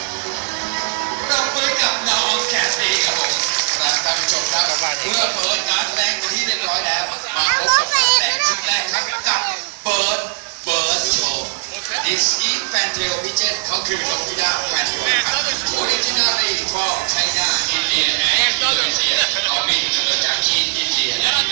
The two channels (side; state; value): left; silent; digital silence